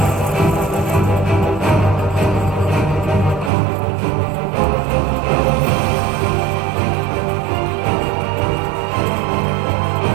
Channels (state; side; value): drops out; left; at 3.5 s